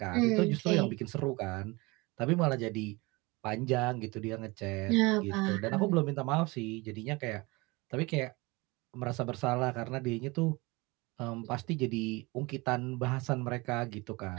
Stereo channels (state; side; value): quieter; left; 24.6 dB